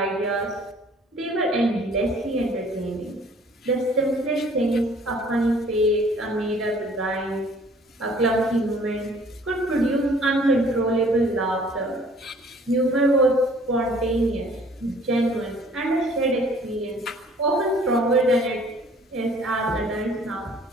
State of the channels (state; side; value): normal; both; correlation 0.56